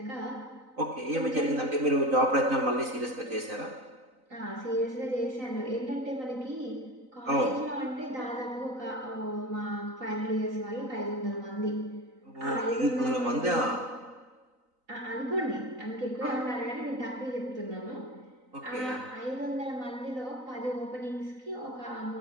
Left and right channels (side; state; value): left; late; 3.9 ms